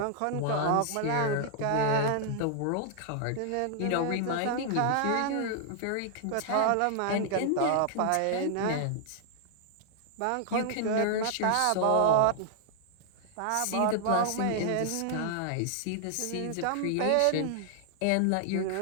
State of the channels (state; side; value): different; both; correlation 0.00